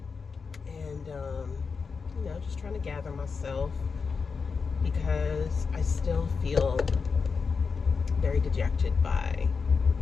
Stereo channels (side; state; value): right; quieter; 5.2 dB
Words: And, you know, just trying to gather myself because I still feel very dejected by